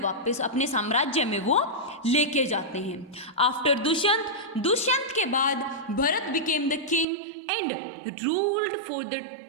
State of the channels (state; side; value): drops out; left; at 7.1 s